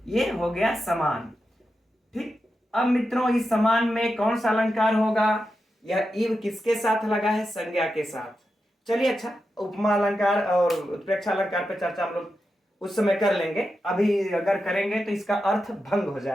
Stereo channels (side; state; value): both; normal; correlation 0.89